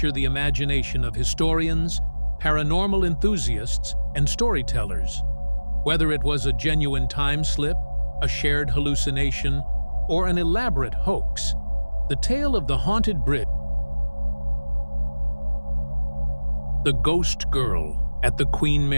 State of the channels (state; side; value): inverted; both; correlation -1.00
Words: the imagination of historians, paranormal enthusiasts, and storytellers. Whether it was a genuine time slip, a shared hallucination, or an elaborate hoax, the tale of the haunted bridge, the ghost girl at the Queen